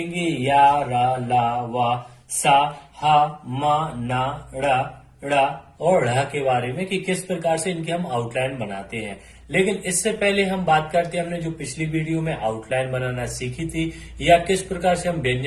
या, रा, ला, वा, सा, हा, मा, ना, ड़ा और ढ़ के बारे में कि किस प्रकार से इनकी हम आउटलाइन बनाते हैं। लेकिन इससे पहले हम बात करते हैं हमने जो पिछली वीडियो में आउटलाइन बनाना सीखी थी या किस प्रकार से हम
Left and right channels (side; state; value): both; identical; correlation 1.00